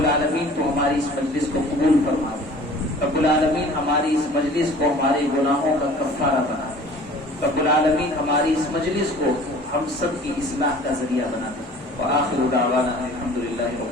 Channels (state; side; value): normal; both; correlation 0.47